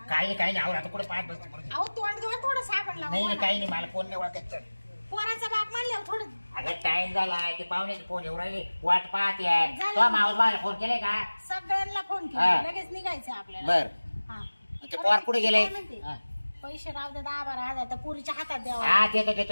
काही नाही आवर आता कुठे पाहत बसते परत. अहो तोंड घेऊन थोडं साबण नाही नाही लावा काही नाही मला फोन नाही ओळखायचं पोराचा बाप म्हणल्यावर थोडं अगं टाइम झाला ते पाहुण्याचे फोन येऊ राहिले वाट पाहते आहे झालं. तो माऊस बाळाला फोन केलाय का सगळ्यांना फोन हा. केला लगेच निघायचं आपल्याला बर हा ते पोर कुठे गेले काय म्हणते? हा. पैसे राहू दे 10-12 तर पुरीच्या हातात द्यावा हा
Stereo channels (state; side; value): inverted; both; correlation -1.00